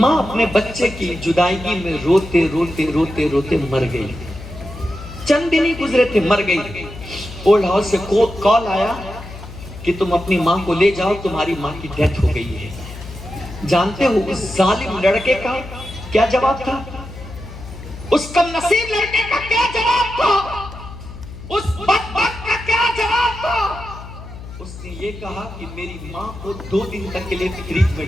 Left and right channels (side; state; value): left; noise; hum, 13 dB below the sound